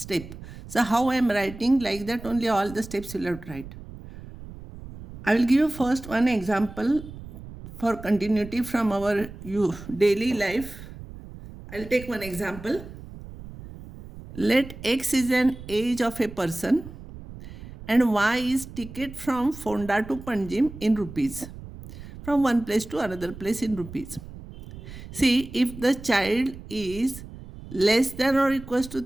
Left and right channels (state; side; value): noise; right; rumble, 14 dB below the sound